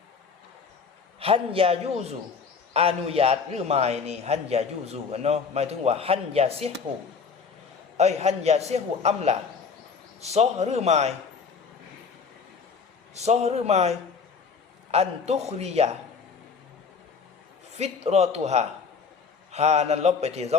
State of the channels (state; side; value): quieter; right; 5.5 dB